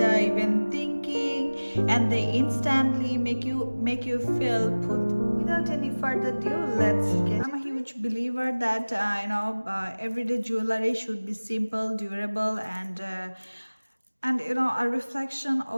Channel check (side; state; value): both; inverted; correlation -1.00